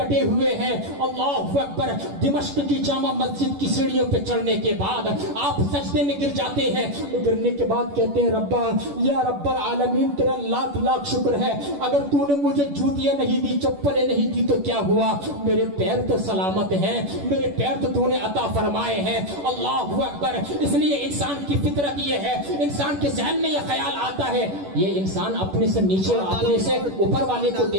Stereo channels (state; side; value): late; left; 11 ms